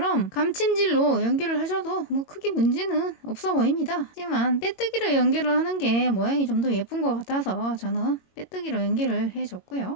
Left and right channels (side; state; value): right; late; 22 ms